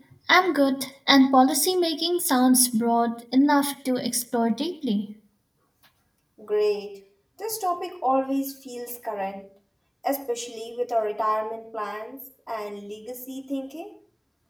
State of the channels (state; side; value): identical; both; correlation 1.00